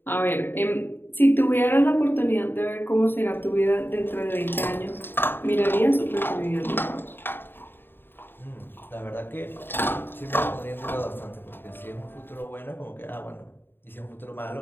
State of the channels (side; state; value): right; late; 0.099 ms